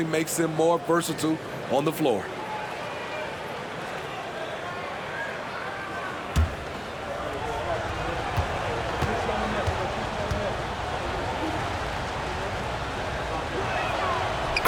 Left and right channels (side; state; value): both; identical; correlation 1.00